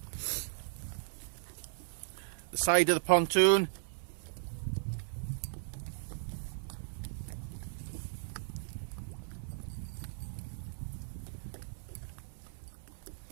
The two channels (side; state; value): left; silent; 53 dB below the other